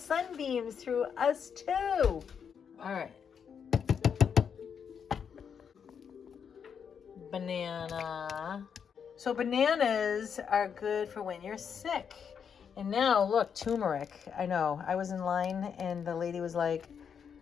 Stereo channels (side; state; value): right; quieter; 7.2 dB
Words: through us too. All right. Banana. So bananas are good for when you're sick. And now, look, turmeric. I know. I was in line, and the lady was like,